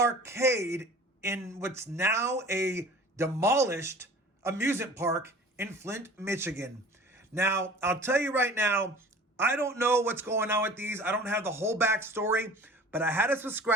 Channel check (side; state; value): both; normal; correlation 0.44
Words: in what's now a demolished amusement park in Flint, Michigan. Now, I'll tell you right now, I don't know what's going on with these. I don't have the whole backstory, but I had a